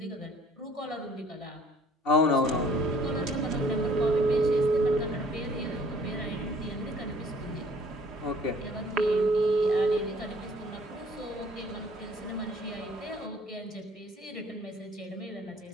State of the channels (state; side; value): normal; both; correlation 0.56